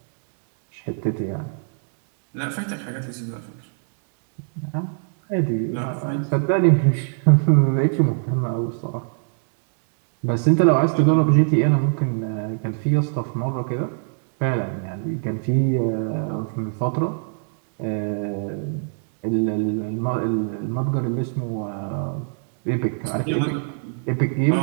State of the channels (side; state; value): left; silent; digital silence